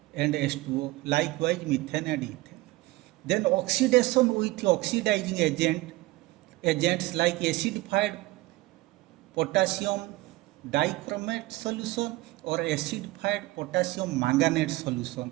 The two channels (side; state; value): left; quieter; 19.9 dB